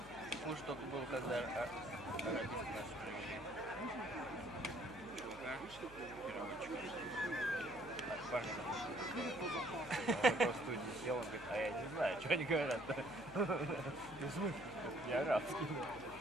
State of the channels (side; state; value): left; noise; hum, 18 dB below the sound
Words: хуже только был, когда арабисты наши привели. Чувака, переводчика. Парня. Он просто в студии сел, он говорит, а я не знаю, что они говорят-то. Ну, в смысле? Не арабский.